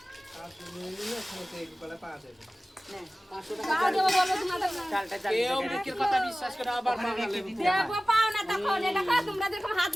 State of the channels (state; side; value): normal; both; correlation 0.97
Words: পাও দেবো বলো তোমাদের না। চালটা কেউ বিক্রির কথা বিশ্বাস করে আবার বাঙালি দেবো পাও না তখন। এটা খাও, তোমরা যেরকম হাত